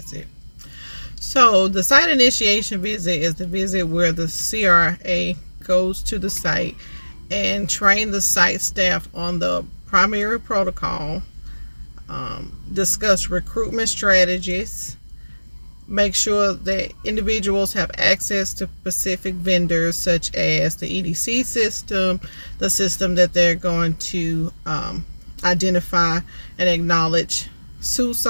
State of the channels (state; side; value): inverted; both; correlation -1.00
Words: So the site initiation visit is the visit where the CRA goes to the site and train the site staff on the primary protocol, discuss recruitment strategies, make sure that individuals have access to specific vendors such as the EDC system, the system that they're going to identify and acknowledge